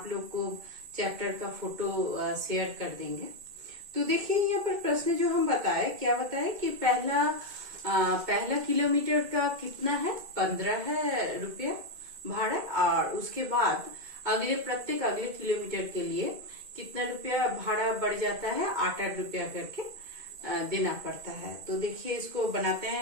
लोग को चैप्टर का फोटो शेयर कर देंगे। तो देखिए यहाँ पर प्रश्न जो हम बताए, क्या बताए कि पहला किलोमीटर का कितना है, 15 है रुपया भाड़ा, और उसके बाद प्रत्येक अगले किलोमीटर के लिए कितना रुपया भाड़ा बढ़ जाता है, 8 रुपया करके देना पड़ता है। तो देखिए इसको बनाते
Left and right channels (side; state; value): left; late; 2.1 ms